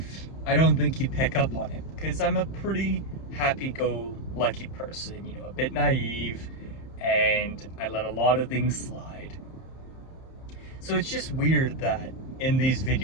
I don't think you'd pick up on it because I'm a pretty happy-go-lucky person, a bit naive, and I let a lot of things slide. So it's just weird that in these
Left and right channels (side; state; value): right; late; 31 ms